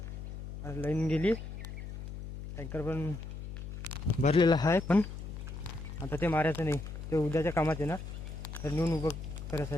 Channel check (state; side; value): noise; left; hum, 9 dB below the sound